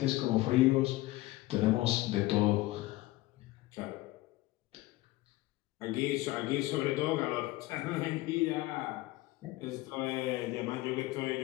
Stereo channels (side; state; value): right; quieter; 18.5 dB